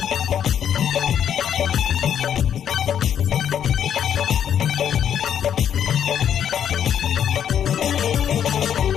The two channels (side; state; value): right; quieter; 9.1 dB